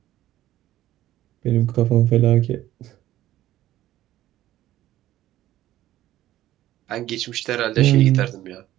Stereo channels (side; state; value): left; quieter; 14.1 dB